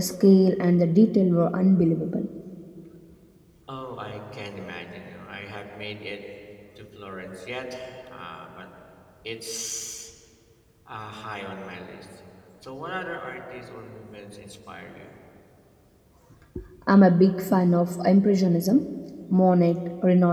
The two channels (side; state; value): both; identical; correlation 1.00